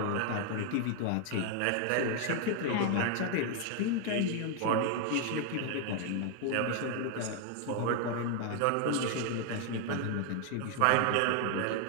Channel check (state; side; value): different; both; correlation 0.00